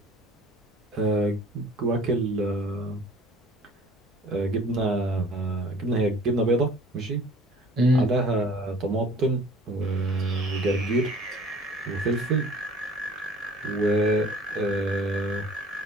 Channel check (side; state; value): both; normal; correlation 0.49